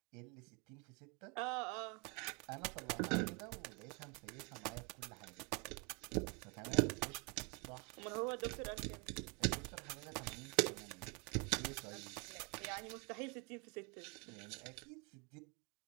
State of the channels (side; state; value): left; quieter; 32.5 dB